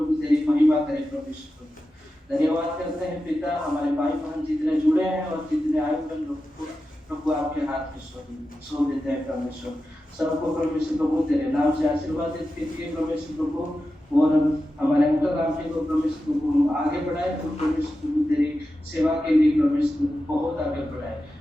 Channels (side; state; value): both; normal; correlation 0.92